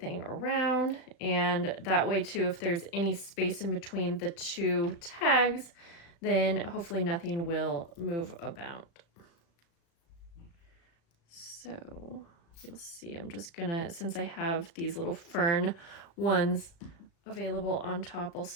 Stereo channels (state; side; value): late; right; 35 ms